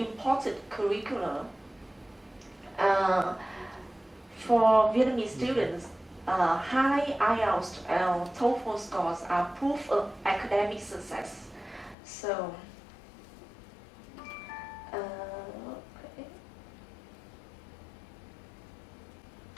curricula. For Vietnamese students, high IELTS and TOEFL scores are proof of academic success. So, okay.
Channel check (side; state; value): right; drops out; at 12.0 s